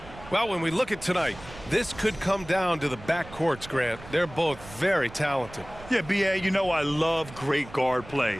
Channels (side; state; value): right; noise; rumble, 17 dB below the sound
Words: Well, when we look at tonight, this could come down to the backcourts, Grant. They're both very talented. Yeah, B.A., you know I love great guard